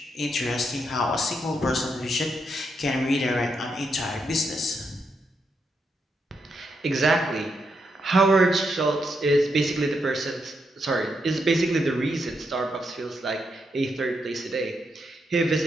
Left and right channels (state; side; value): normal; both; correlation 0.81